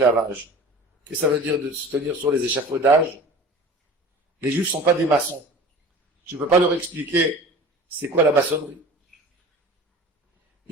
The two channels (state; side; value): normal; both; correlation 0.39